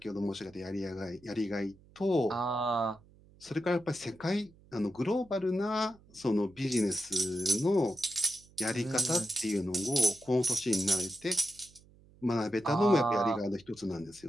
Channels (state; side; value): noise; right; hum, 26 dB below the sound